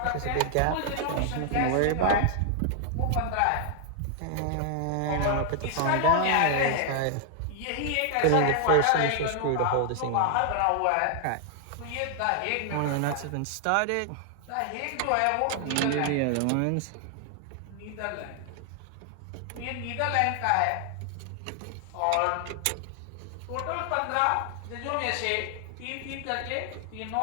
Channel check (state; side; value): different; both; correlation 0.00